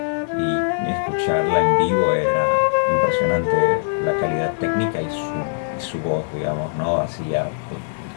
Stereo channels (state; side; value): silent; right; 65 dB below the other